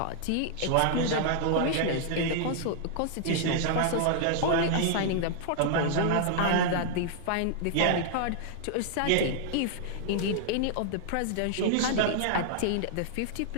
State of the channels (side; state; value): both; different; correlation -0.01